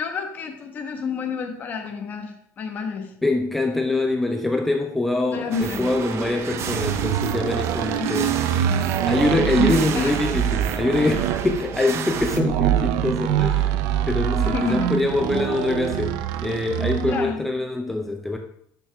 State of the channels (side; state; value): both; normal; correlation 0.58